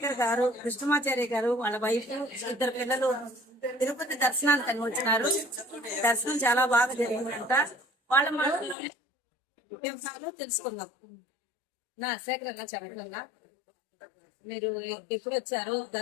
గారు, కృష్ణమాచార్య గారు, వాళ్ళ వైఫ్, ఇద్దరు పిల్లలు తిరుపతి దర్శనానికి వచ్చినారు. దర్శనం చాలా బాగా జరిగిందంట. వాళ్ళ మాటల్లోనే వివరాలు తెలుసుకుందాం. నా శేఖర్ అన్న చెప్పండి అన్న, మీరు ఎప్పుడు వచ్చారు,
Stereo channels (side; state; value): right; drops out; at 8.8 s